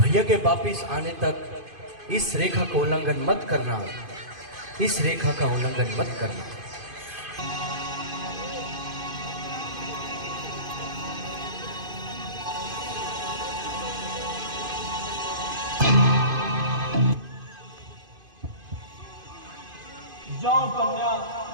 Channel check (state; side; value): late; left; 2.5 ms